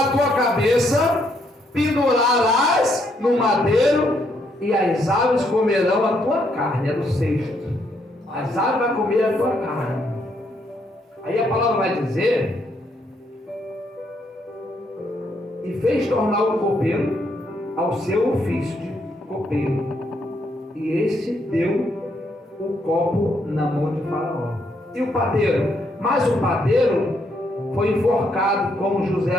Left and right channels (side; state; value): both; normal; correlation 0.74